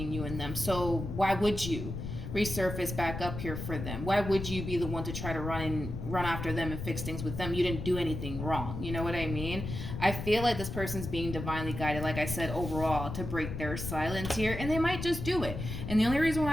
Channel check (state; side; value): noise; left; rumble, 6 dB below the sound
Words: you and them. So why would you resurface back up here for them? Why would you be the one to try to run after them and fix things with them? You didn't do anything wrong. You know what I mean? I feel like this person's being divinely guided, like I said, overall, to break their silence here, and they might just do it. And the only reason why